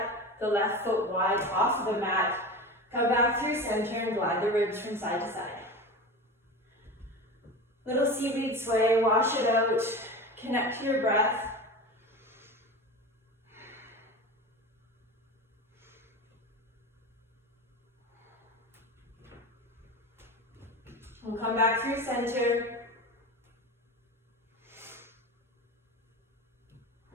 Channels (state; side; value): normal; both; correlation 0.29